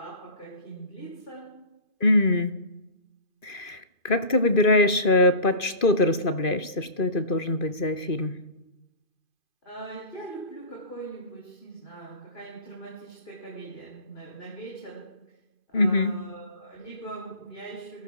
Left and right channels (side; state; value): right; late; 2.5 ms